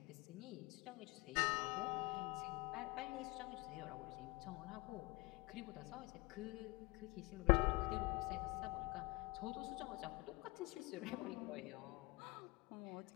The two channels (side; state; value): right; quieter; 24.1 dB